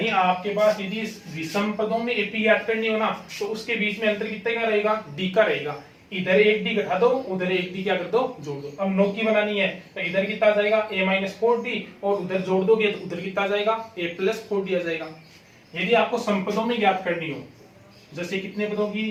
आपके पास यदि विषम पदों में एपी याद करनी हो ना, तो उसके बीच में अंतर कितने का रहेगा, डी का रहेगा। इधर एक डी घटा दो, उधर एक डी क्या कर दो, जोड़ दो। अब 9 की बनानी है तो इधर कितना आ जाएगा, ए माइनस 4d, और उधर जोड़ दोगे तो उधर कितना आ जाएगा, ए प्लस 4d आ जाएगा। यदि आपको समपदों में ज्ञात करनी हो, जैसे कितने पदों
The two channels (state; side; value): identical; both; correlation 1.00